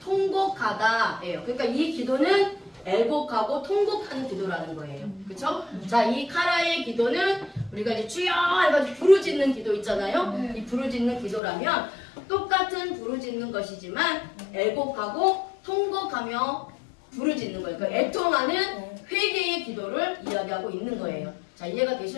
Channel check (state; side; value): drops out; right; at 11.4 s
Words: 통곡하다예요. 그러니까 이 기도는 애곡하고 통곡하는 기도라는 거예요. 그쵸? 자, 이 카라의 기도는 우리가 이제 주여 해가지고 부르짖는 기도 있잖아요. 이 부르짖는 기도라면 똑같은 부르짖는 것이지만 애곡하고 통곡하며 부르짖는 거예요. 그러니까 애통하는 회개의 기도를 이야기하고 있는 거예요. 자, 이해가